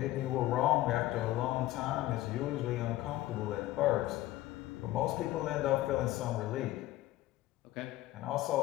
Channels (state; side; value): quieter; right; 16.0 dB